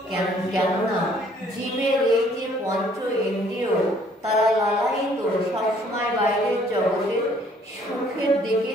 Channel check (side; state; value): both; normal; correlation 0.61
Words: কেননা জীবের এই যে পঞ্চ ইন্দ্রিয়, তারা লালায়িত সবসময় বাইরের জগতে সুখের দিকে